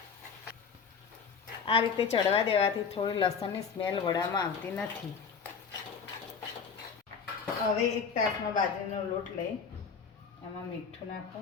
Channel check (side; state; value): right; quieter; 6.0 dB